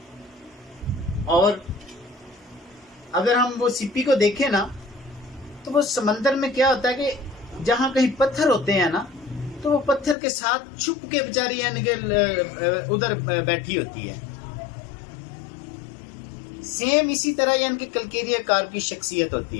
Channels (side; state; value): right; drops out; at 10.2 s